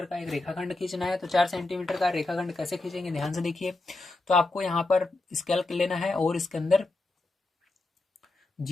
का एक रेखाखंड खींचना है। तो 4 सेंटीमीटर का रेखाखंड कैसे खींचेंगे, ध्यान से देखिए। तो आपको यहाँ पर स्केल लेना है और इसके अंदर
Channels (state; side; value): quieter; right; 3.1 dB